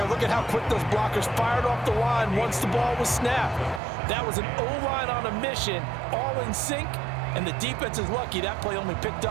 Look at how quick those blockers fired off the line once the ball was snapped. That was an O-line on a mission, all in sync, and the defense is lucky that play only picked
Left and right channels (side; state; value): left; drops out; at 3.8 s